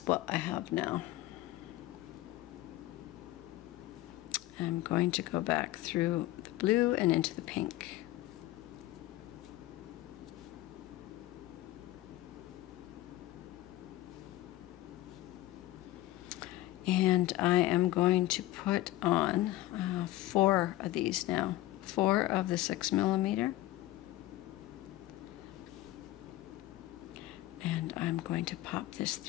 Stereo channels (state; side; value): quieter; right; 16.2 dB